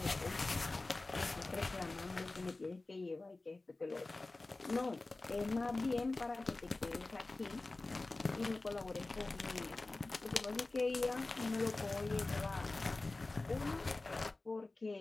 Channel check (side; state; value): right; quieter; 3.2 dB